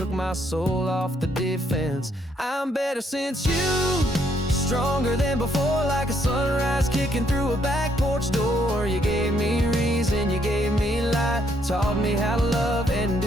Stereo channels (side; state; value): both; normal; correlation 0.71